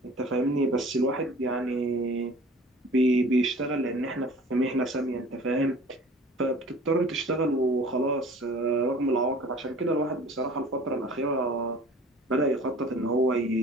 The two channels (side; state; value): both; normal; correlation 0.46